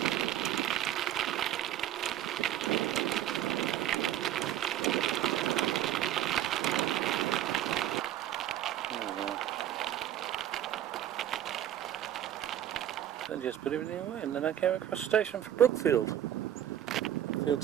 I just put everything away, and then I came across the station for Brookfield. Brookfield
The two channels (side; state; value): left; quieter; 11.5 dB